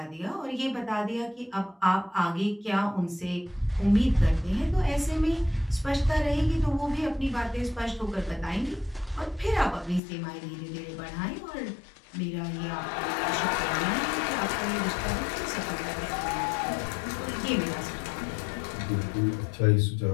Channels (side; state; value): right; drops out; at 10.0 s